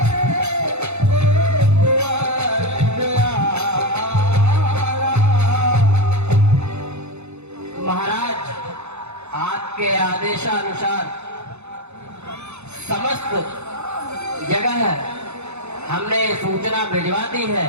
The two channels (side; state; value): left; late; 0.81 ms